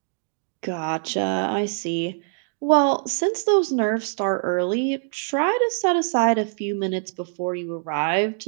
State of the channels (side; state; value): left; silent; digital silence